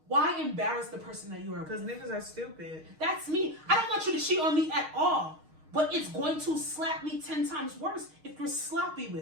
Why embarrass the person that you are Because with? niggas are stupid. That's me. I don't want you to cheat on me at all. But it's going to slap me 10 times worse if you're sloppy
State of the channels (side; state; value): left; late; 6.4 ms